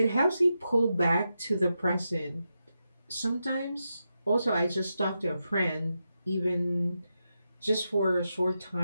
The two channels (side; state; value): both; inverted; correlation -0.87